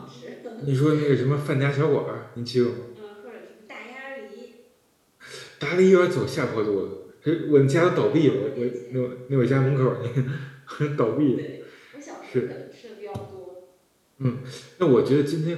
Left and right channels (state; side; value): identical; both; correlation 1.00